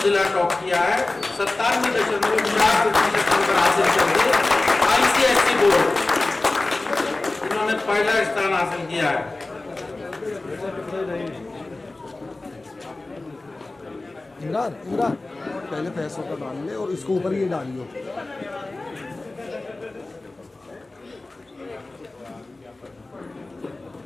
जिला टॉप किया है, 97.4% नंबर हासिल करके ICSE बोर्ड इन्होंने पहला स्थान हासिल किया है। इमरान इमरान पहले पैसों का डाल ले और इसको ऊपर ये डालियो।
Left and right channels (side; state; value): right; quieter; 3.1 dB